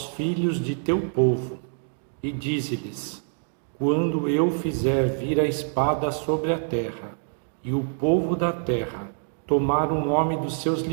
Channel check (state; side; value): silent; left; 61 dB below the other